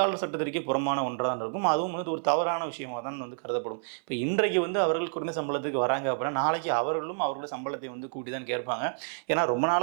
சட்டத்திற்கே புறமான ஒன்றாக தான் இருக்கும். அதுவும் வந்து ஒரு தவறான விஷயமாக தான் வந்து கருதப்படும். இப்போ இன்றைக்கு வந்து அவர்கள் குறைந்த சம்பளத்துக்கு வராங்க அப்படின்னா நாளைக்கு அவர்களும் அவர்களுடைய சம்பளத்தை வந்து கூட்டி தான் கேட்பாங்க. ஏன்னா ரொம்ப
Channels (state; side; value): silent; left; 59 dB below the other